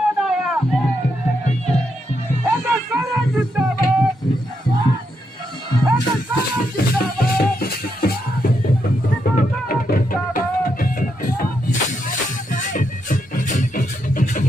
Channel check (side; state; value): both; normal; correlation 0.81